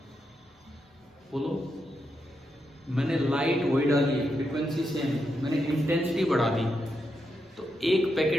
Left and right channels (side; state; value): both; normal; correlation 0.84